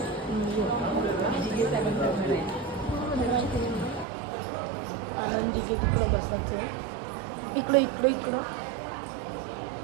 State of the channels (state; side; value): drops out; left; at 4.0 s